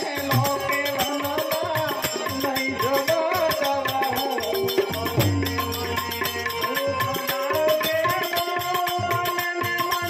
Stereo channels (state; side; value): identical; both; correlation 1.00